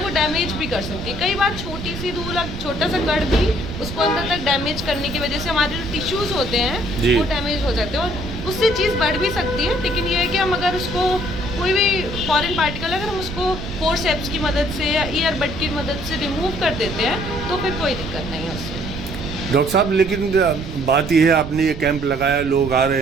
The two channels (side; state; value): right; noise; rumble, 8 dB below the sound